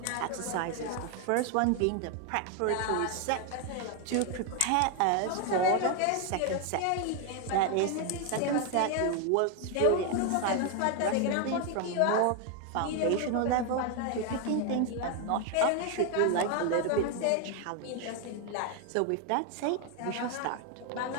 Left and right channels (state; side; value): different; both; correlation 0.01